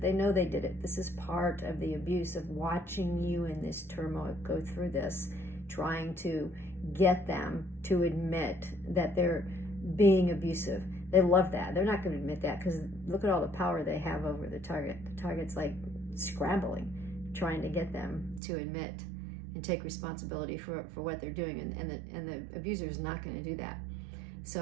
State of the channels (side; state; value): left; drops out; at 18.4 s